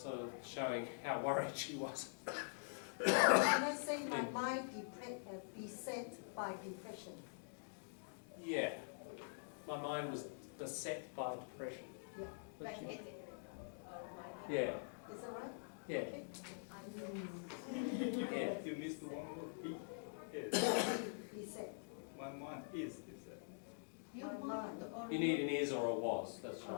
of showing how worried she was. Can I say my mind beset by depression? Yeah. My mind was beset by depression. Yeah. Like What you- headache or migraine. Yeah. Is that right? Yeah. Okay. Yeah. You missed one word. Yes. Beset. One month is it? You want You need an is or a was, that's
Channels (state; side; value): silent; right; digital silence